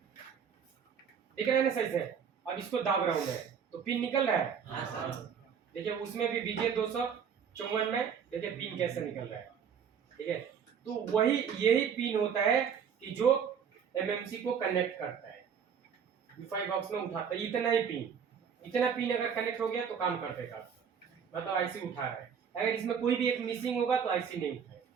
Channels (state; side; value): quieter; left; 7.3 dB